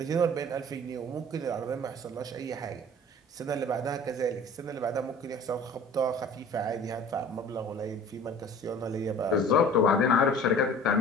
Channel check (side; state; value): both; normal; correlation 0.45